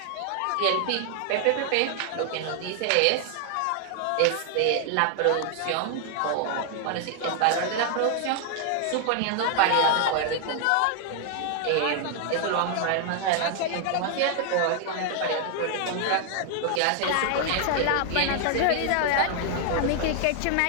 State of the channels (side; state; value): both; different; correlation 0.00